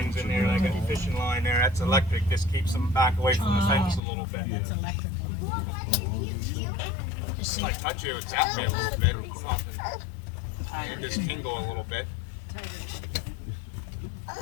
in there, like a fishing line there. That's electric. This keeps them back away from the fence a little bit. Just like touch you, it zapped me a little bit. It just tingle a little bit.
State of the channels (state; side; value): drops out; right; at 4.0 s